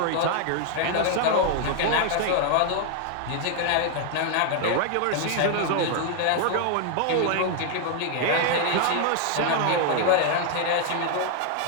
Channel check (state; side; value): different; both; correlation 0.00